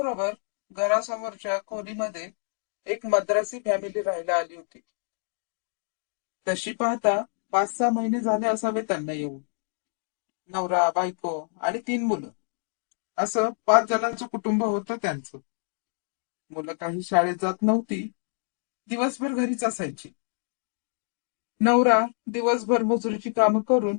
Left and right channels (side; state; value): right; silent; 60 dB below the other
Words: घरासमोरच्या खोलीमध्ये एक मद्रासी फॅमिली राहायला आली होती. तशी पाहता 5-6 महिने झाले असावे त्यांना येऊन. नवरा, बायको आणि 3 मुलं, असं 5 जणांचं कुटुंब होतं त्यांचं. मुलं काही शाळेत जात नव्हती, दिवसभर घरीच असायची. नवरा दिवसभर मजुरीची कामं करून